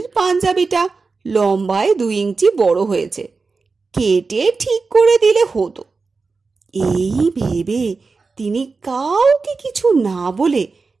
পাঞ্জাবিটা লম্বায় 2 ইঞ্চি বড় হয়েছে, কেটে ঠিক করে দিলে হতো। এই ভেবে তিনি কাউকে কিছু না বলে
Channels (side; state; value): left; quieter; 4.3 dB